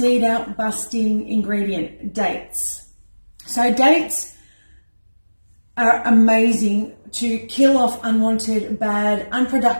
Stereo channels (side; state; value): both; inverted; correlation -1.00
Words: busting ingredient, dates. So dates are amazing to kill off unwanted, bad,